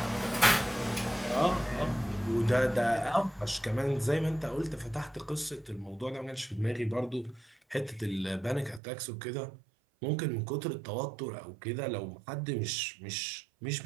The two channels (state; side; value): drops out; left; at 8.8 s